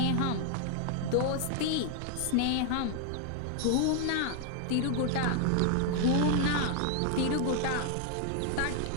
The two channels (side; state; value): both; different; correlation 0.00